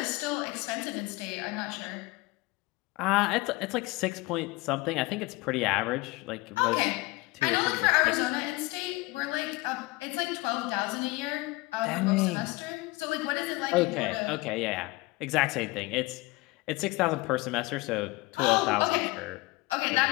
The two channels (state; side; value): quieter; right; 22.0 dB